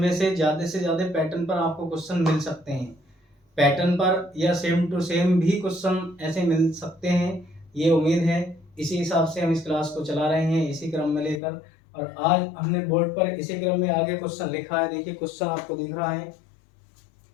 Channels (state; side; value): drops out; right; at 11.4 s